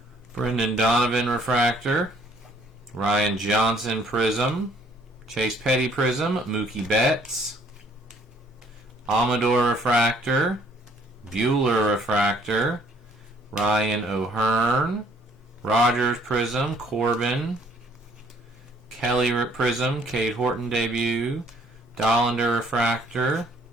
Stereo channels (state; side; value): normal; both; correlation 0.62